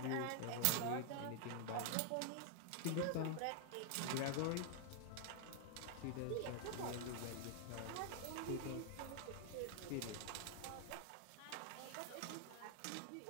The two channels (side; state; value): both; different; correlation 0.00